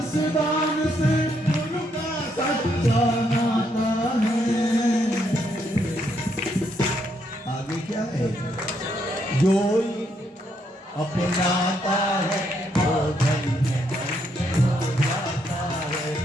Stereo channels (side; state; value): both; normal; correlation 0.75